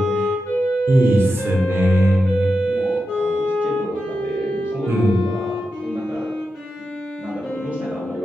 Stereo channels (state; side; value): normal; both; correlation 0.89